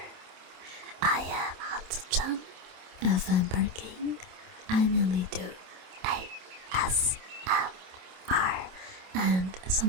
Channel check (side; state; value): left; late; 27 ms